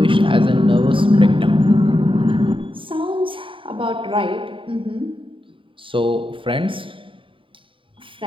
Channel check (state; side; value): late; left; 0.25 ms